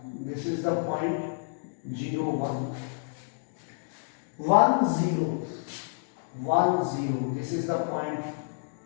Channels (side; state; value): right; silent; digital silence